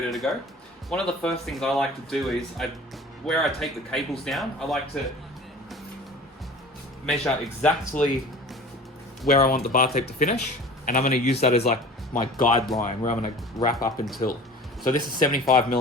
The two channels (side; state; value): both; normal; correlation 0.41